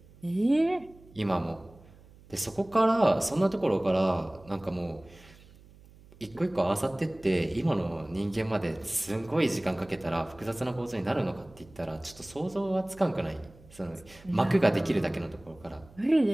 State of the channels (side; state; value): right; noise; hum, 24 dB below the sound